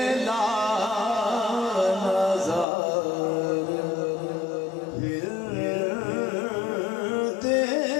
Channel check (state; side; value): drops out; right; at 2.7 s